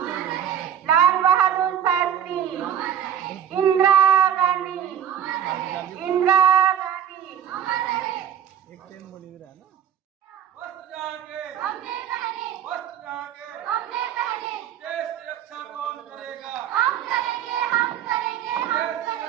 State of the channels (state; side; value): quieter; left; 9.4 dB